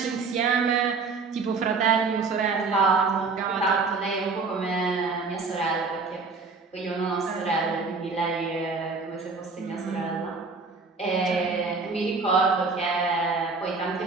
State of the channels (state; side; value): quieter; left; 4.4 dB